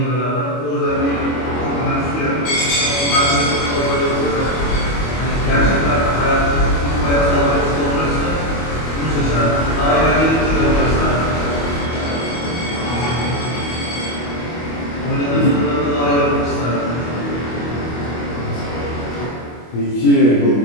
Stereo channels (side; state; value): right; late; 25 ms